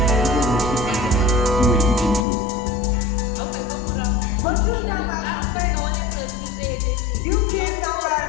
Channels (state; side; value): drops out; right; at 2.2 s